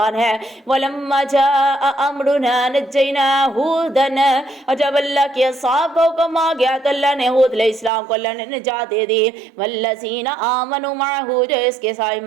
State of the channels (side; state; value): left; drops out; at 7.9 s